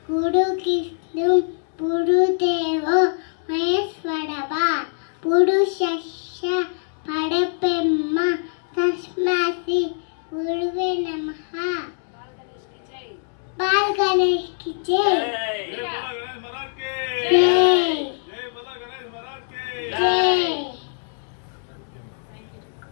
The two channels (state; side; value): silent; right; digital silence